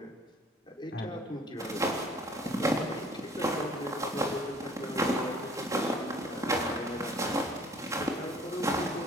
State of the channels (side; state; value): both; normal; correlation 0.53